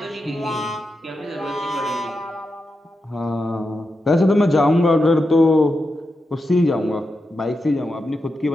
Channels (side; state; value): both; normal; correlation 0.88